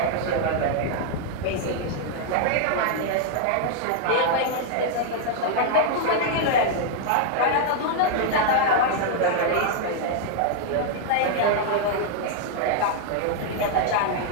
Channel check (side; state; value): both; different; correlation 0.00